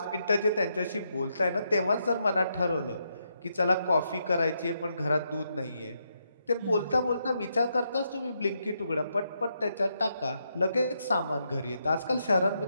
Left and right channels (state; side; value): inverted; both; correlation -0.80